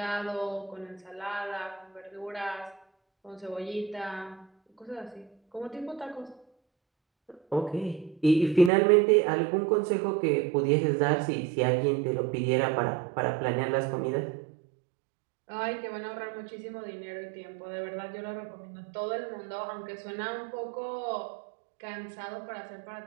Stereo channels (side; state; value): left; drops out; at 8.7 s